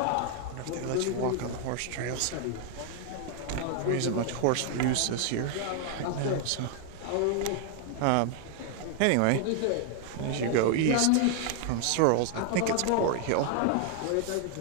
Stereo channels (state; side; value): different; both; correlation 0.00